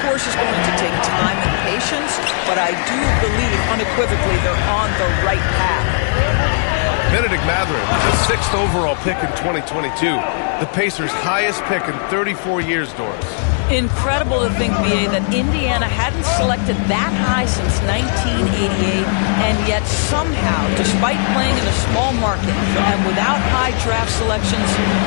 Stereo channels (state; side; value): silent; right; 65 dB below the other